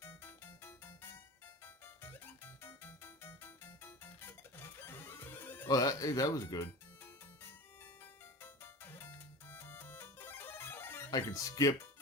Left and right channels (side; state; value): both; normal; correlation 0.32